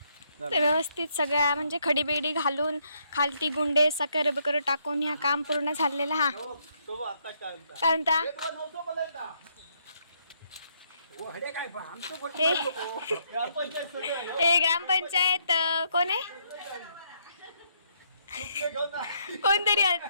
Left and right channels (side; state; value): both; inverted; correlation -0.73